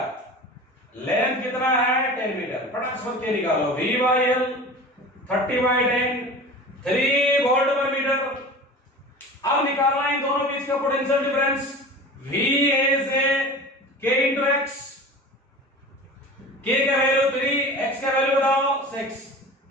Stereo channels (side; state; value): both; normal; correlation 0.36